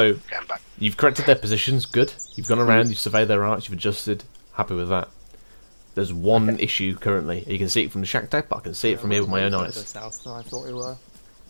Getting back. you've corrected their positions. Good. You've gone around, you've surveyed their arcs, you've adjusted. Happy with that. There's one issue currently. You can see it from the shack deck, but I can see it from here with my own eyes. South than I thought we were.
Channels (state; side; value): inverted; both; correlation -1.00